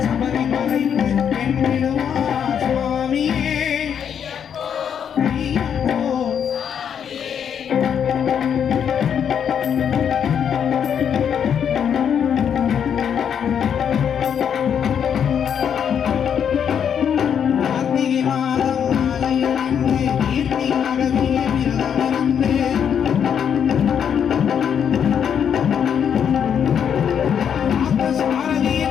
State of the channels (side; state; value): right; quieter; 8.1 dB